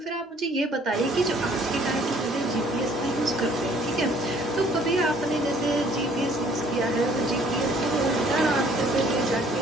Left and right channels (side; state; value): both; normal; correlation 0.59